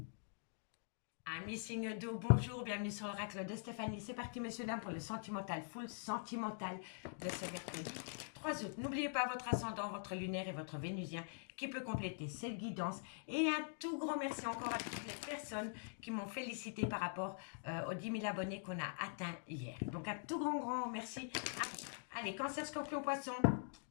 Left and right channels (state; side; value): silent; right; digital silence